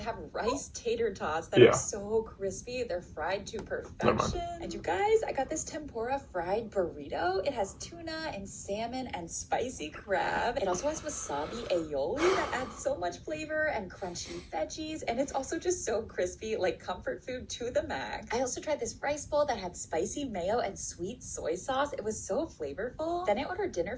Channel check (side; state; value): both; identical; correlation 1.00